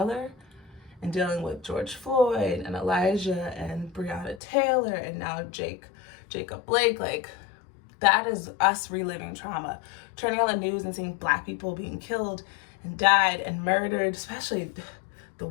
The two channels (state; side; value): drops out; right; at 4.4 s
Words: and dealing with George Floyd and Elijah and Breonna Taylor and now Jacob Blake. Like, that is us reliving trauma. Turning on the news and seeing Black people being killed and died and murdered, especially the